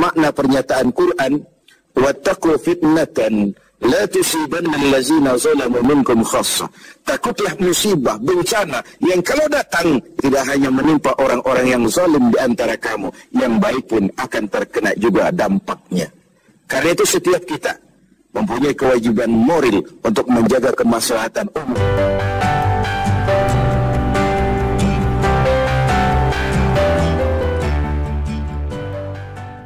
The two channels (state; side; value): identical; both; correlation 1.00